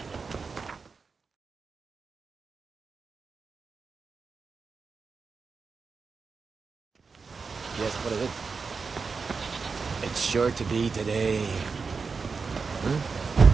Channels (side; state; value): left; quieter; 4.9 dB